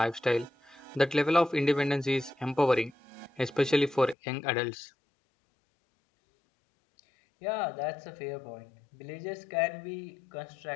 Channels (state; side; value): drops out; right; at 4.2 s